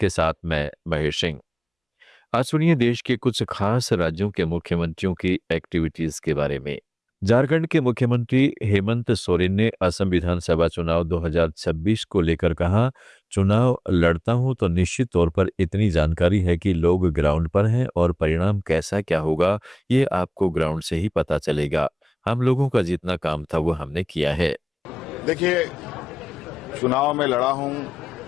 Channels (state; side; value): normal; both; correlation 0.96